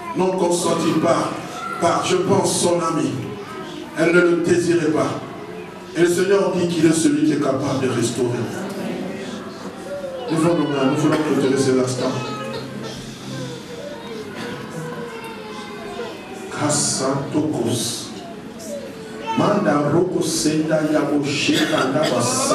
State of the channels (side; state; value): both; identical; correlation 1.00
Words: Non consentie par, je pense, son ami. Elle ne le désirait pas. Et le Seigneur dit qu'il est celui qui est capable de restaurer. Nous voulons clôturer cet instant. Kassantokos. Manda roko senda yabo sheka ndaba